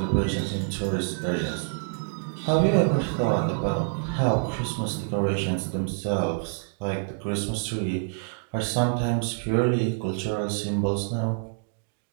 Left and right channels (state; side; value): silent; left; digital silence